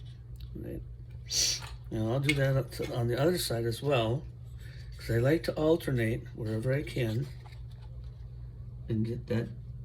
Right. Now I'll do that on the other side as well, because I like to alternate wherever I can and get that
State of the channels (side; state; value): both; identical; correlation 1.00